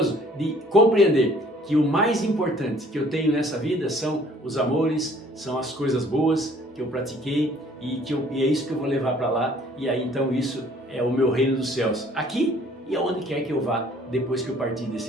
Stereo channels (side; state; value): both; normal; correlation 0.57